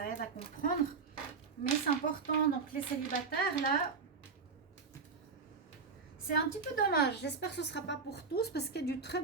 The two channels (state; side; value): quieter; left; 5.1 dB